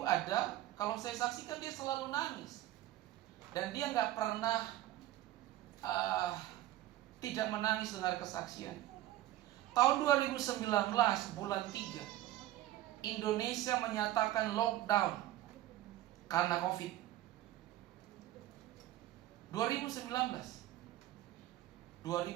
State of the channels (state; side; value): quieter; left; 14.7 dB